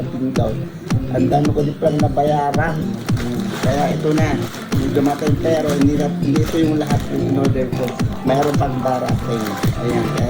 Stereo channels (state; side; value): identical; both; correlation 1.00